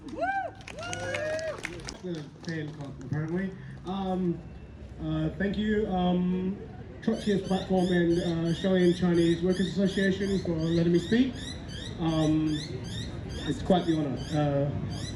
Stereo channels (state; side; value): identical; both; correlation 1.00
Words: The fan club, apparently. Thank you, Trotskyist platform and Australian Chinese Workers Association for letting me speak. It's quite the honour.